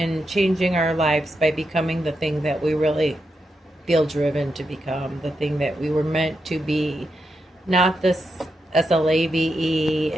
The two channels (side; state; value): both; normal; correlation 0.85